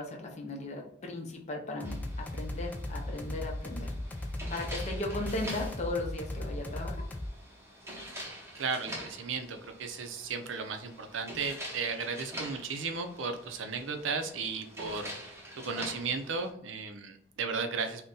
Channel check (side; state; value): both; normal; correlation 0.27